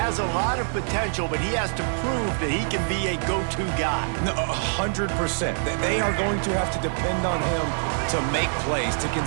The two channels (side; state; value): left; silent; 59 dB below the other